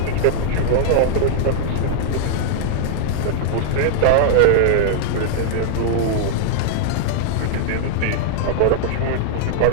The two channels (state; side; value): different; both; correlation -0.01